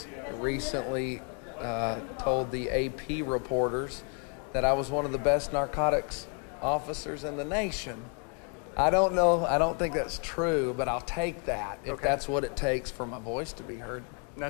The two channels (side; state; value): right; quieter; 36.6 dB